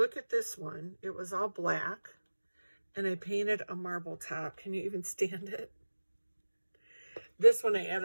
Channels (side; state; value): both; inverted; correlation -1.00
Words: at this one. It was all black, and I painted a marble top. Can you even stand it? This one I